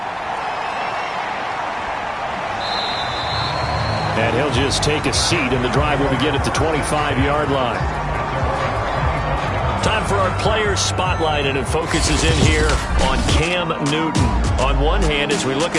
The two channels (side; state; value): both; identical; correlation 1.00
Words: And he'll just take a seat, and the drive will begin at the 25-yard line. Time for our players spotlight, and it focuses in here on Cam Newton. On one hand, as we look